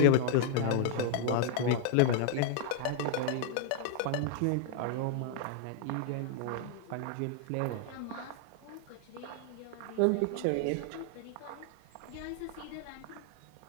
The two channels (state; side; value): different; both; correlation -0.01